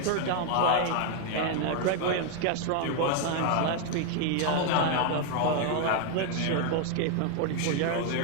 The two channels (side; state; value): both; different; correlation 0.00